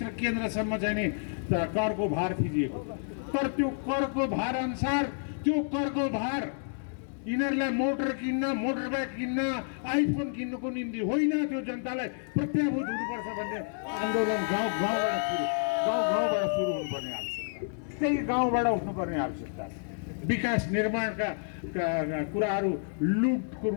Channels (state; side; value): silent; right; 58 dB below the other